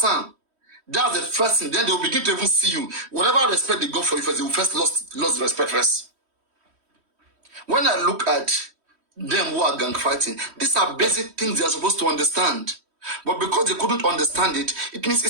That's the first thing. Then they will begin to even see you. Whatever respect they got for you first, they will first lost respect first. When I look at them who are gang fighting, these are basic things they are supposed to understand. But because they couldn't understand it, it means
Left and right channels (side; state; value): left; late; 3.1 ms